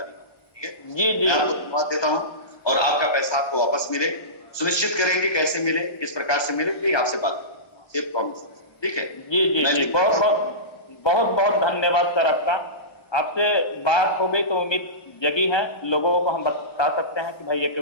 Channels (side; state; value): right; late; 1.2 ms